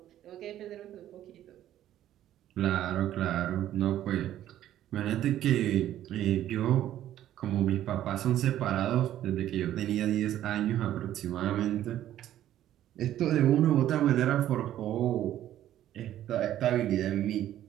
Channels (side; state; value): left; quieter; 12.3 dB